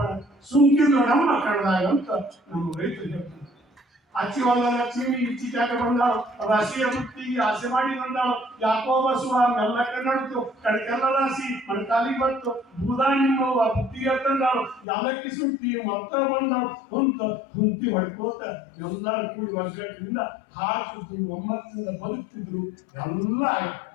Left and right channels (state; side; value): drops out; right; at 14.9 s